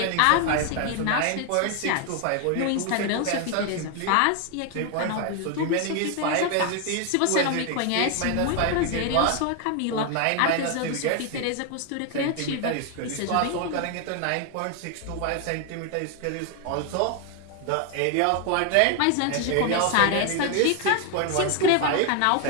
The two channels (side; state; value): both; different; correlation 0.01